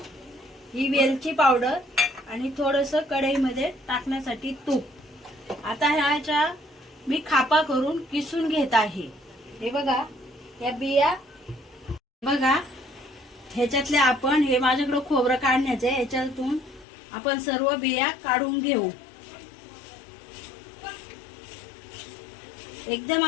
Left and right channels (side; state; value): right; drops out; at 16.9 s